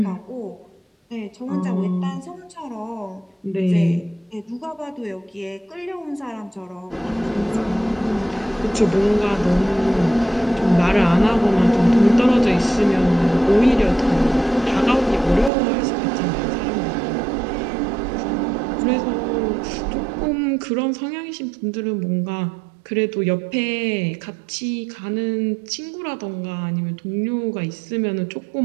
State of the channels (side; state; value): left; drops out; at 15.5 s